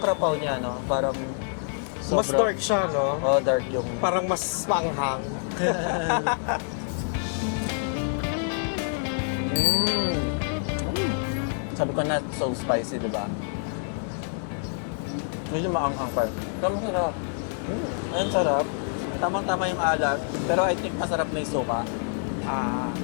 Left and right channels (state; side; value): silent; right; 60 dB below the other